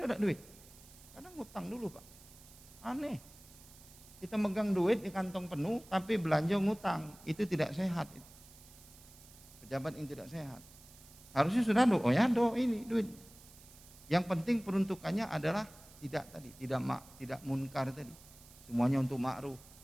duit. Kadang ngutang dulu Pak. Aneh. Kita megang duit di kantong penuh tapi belanja ngutang. Itu tidak sehat. Pejabat yang tidak sehat. Harusnya sudah oh ya ini duit. Yang penting peruntukannya adalah tidak munkar tadi. Semuanya untuk ma'ruf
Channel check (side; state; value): right; noise; hiss, 21 dB below the sound